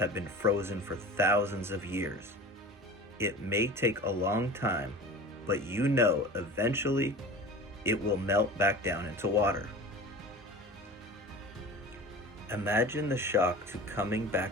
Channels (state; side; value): normal; both; correlation 0.36